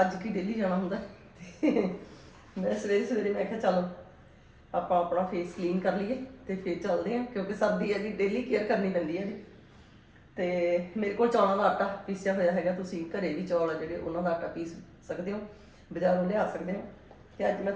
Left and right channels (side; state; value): both; identical; correlation 1.00